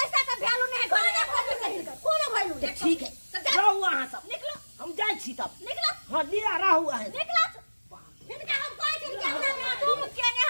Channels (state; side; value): inverted; both; correlation -1.00